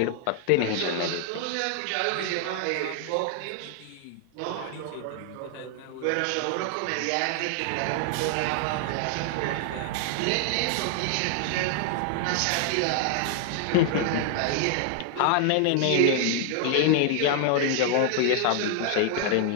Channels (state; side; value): different; both; correlation 0.00